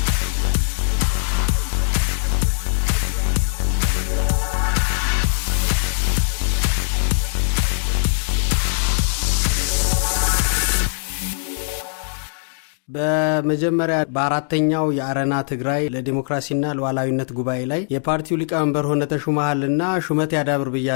በመጀመሪያ በአራተኛው የአረና ትግራይ ለዲሞክራሲና ለሉዓላዊነት ጉባኤ ላይ የፓርቲው ሊቀመንበር ሆነ ተሹመሃልና ሹመት ያዳብር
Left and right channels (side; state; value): right; silent; digital silence